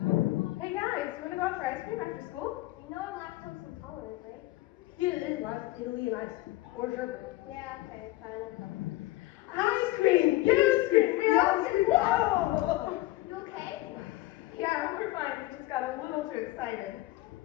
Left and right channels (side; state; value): right; quieter; 18.1 dB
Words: Hey guys, wanna go out for ice cream after school? You know I'm lactose intolerant, right? Here it is, like Italy and ice cream. Or sherbet. Yeah, okay, fine. Ice cream! You scream! We all scream! Whoa! You okay? Yeah, we're fine. We just got a little too excited.